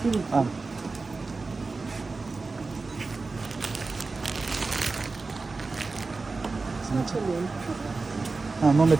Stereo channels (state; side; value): quieter; left; 3.9 dB